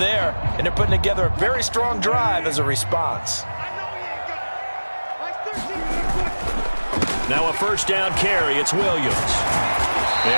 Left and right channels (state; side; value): inverted; both; correlation -1.00